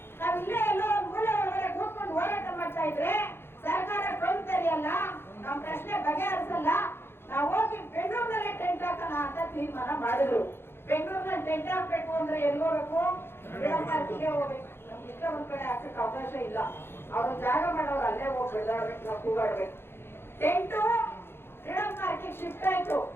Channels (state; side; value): late; right; 0.11 ms